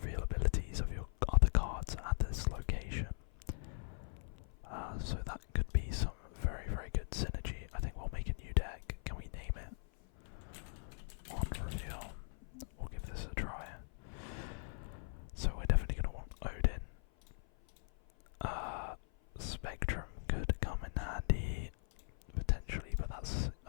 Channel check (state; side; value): silent; right; 51 dB below the other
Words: abilities of your other cards at this location. So that could be some very, very good synergy. I think we'll make a new deck. Can we name it? On reveal. We'll give this a try. So we're definitely going to want Odin. Spectrum could come in handy, potentially, but that's